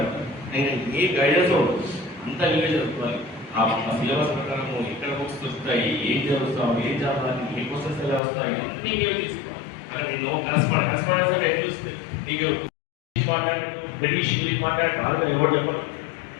నేను ఏ గైడెన్స్ ఉండదు, అంతా నీవే చదువుకోవాలి. ఆ సిలబస్ ప్రకారం ఎక్కడ బుక్స్ వస్తాయి, ఏం చదువుతాం, ఏం చదవాలి, ఏ క్వశ్చన్స్ ఎలా వస్తాయి, అన్నీ నీవే తీసుకోవాలి. అక్కడ నేను కరస్పాండెన్స్ అంటే ఎట్లా చూస్తే నీకు మాట్లాడు బ్రిటిష్ ఇంగ్లీష్ మాట్లాడు బాగా ఎవరు చెప్పరు.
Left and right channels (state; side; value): drops out; right; at 8.2 s